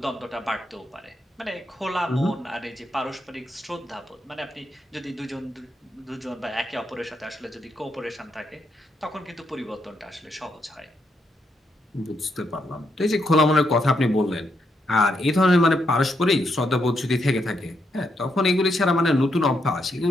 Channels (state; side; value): normal; both; correlation 0.79